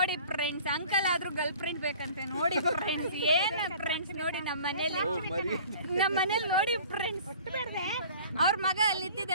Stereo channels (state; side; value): inverted; both; correlation -0.47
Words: ಫ್ರೆಂಡ್ಸ್, ಅಂಕಲ್ ಆದ್ರೂ ಗರ್ಲ್ ಫ್ರೆಂಡ್ ಬೇಕಂತೆ. ನೋಡಿ ಫ್ರೆಂಡ್ಸ್, ಏನು ಫ್ರೆಂಡ್ಸ್ ನೋಡಿ ನಮ್ಮ ಮನೇಲಿ ನೋಡಿ ಫ್ರೆಂಡ್ಸ್, ಅವ್ರ ಮಗ ಅಲ್ಲಿ